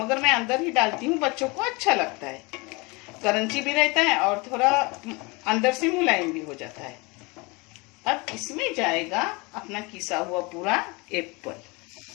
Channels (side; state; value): right; quieter; 26.9 dB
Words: मैं अंदर ही डालती हूँ, बच्चों को अच्छा लगता है। क्रंची भी रहता है और थोड़ा अंदर से मुलायम भी हो जाता है। अब इसमें जाएगा अपना किसा हुआ पूरा एप्पल।